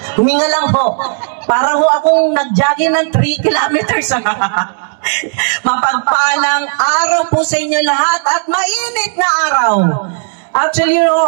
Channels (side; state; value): left; silent; digital silence